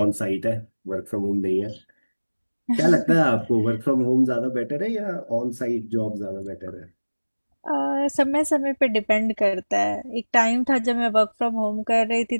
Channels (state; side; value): inverted; both; correlation -1.00